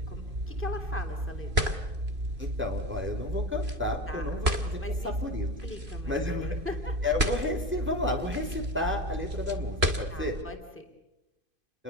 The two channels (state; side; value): late; left; 3.0 ms